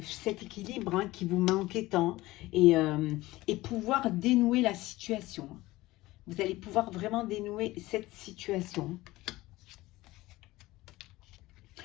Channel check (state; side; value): quieter; right; 18.6 dB